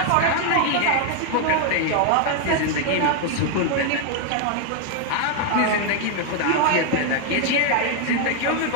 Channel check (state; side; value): different; both; correlation 0.01